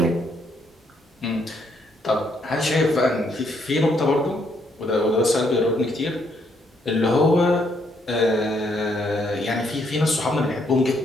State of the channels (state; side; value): normal; both; correlation 0.72